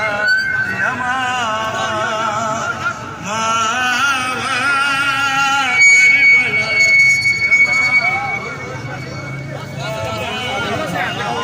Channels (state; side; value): identical; both; correlation 1.00